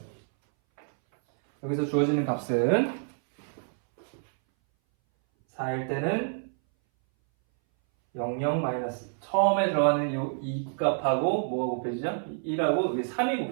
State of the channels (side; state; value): left; silent; 59 dB below the other